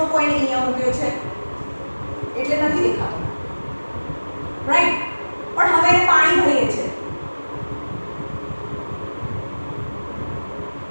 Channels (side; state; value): both; inverted; correlation -1.00